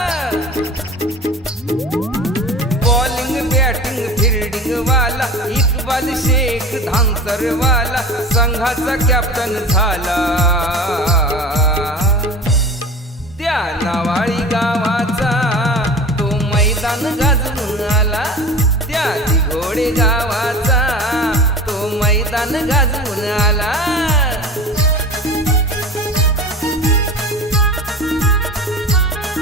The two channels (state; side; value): normal; both; correlation 0.36